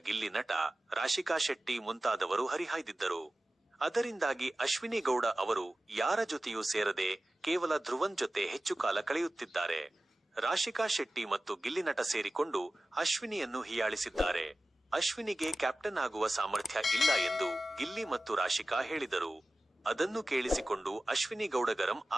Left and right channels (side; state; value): both; normal; correlation 0.95